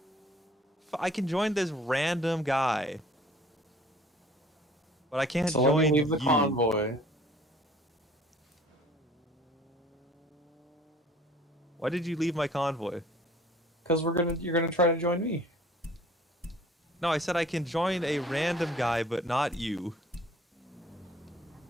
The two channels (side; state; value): both; normal; correlation 0.53